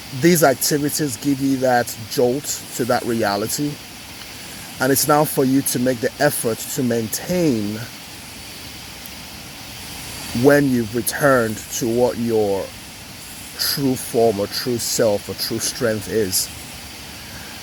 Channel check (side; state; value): both; identical; correlation 1.00